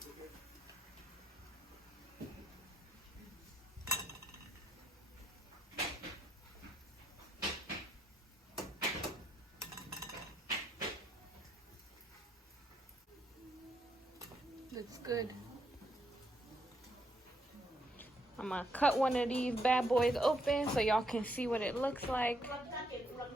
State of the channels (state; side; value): normal; both; correlation 0.76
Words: Looks good. I'm gonna cut one of these bad boys open so y'all can see what it looks like.